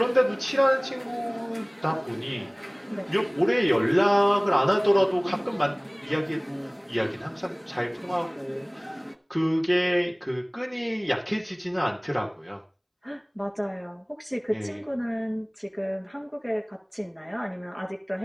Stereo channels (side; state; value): both; identical; correlation 1.00